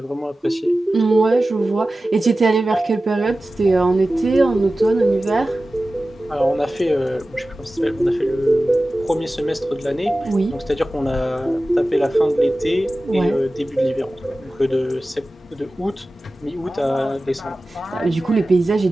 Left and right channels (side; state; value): both; normal; correlation 0.96